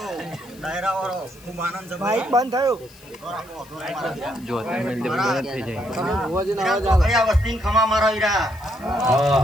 ડાયરાવાળો ખૂબ આનંદ છે માઈક બંધ થયું જો તમે બંધ થઈ જાય ચોકડિયા વસ્તી ખમા મારા વીરા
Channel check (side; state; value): left; noise; hiss, 24 dB below the sound